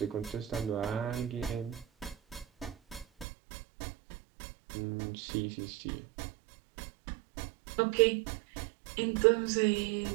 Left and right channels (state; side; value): drops out; left; at 3.2 s